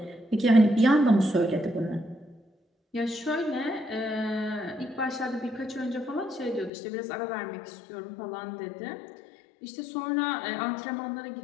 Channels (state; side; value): drops out; right; at 6.7 s